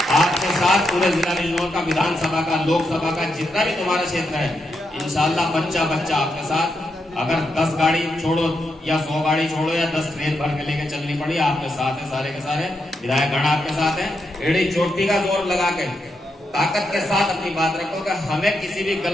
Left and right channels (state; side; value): normal; both; correlation 0.83